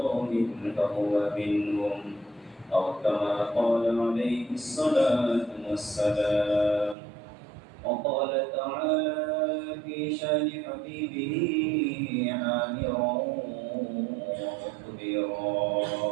فهو منهم أو كما قال عليه الصلاة والسلام وقال تعالى في شان حبيبه آمرا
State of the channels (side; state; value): left; drops out; at 7.0 s